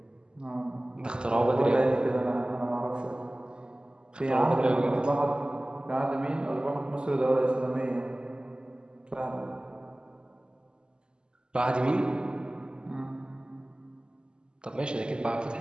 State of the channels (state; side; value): late; left; 0.048 ms